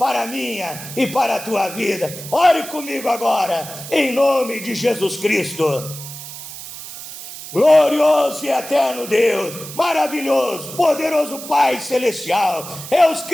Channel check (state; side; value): noise; right; hiss, 12 dB below the sound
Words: a minha e para a tua vida. Ore comigo agora, em nome de Jesus Cristo. Glorioso e eterno Deus, maravilhoso, poderoso Pai Celestial, Deus